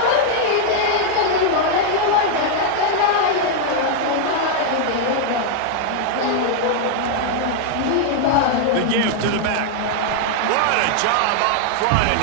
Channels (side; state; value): both; different; correlation 0.00